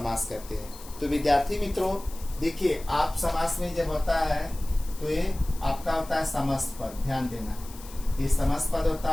करते हैं। तो विद्यार्थी मित्रों देखिए, आप समास में जब होता है तो ये आपका होता है समस्त पद। ध्यान देना, ये समस्त पद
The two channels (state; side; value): noise; left; hiss, 18 dB below the sound